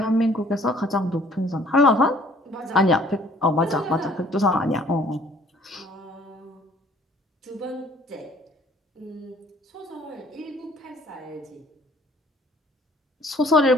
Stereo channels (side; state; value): both; normal; correlation 0.57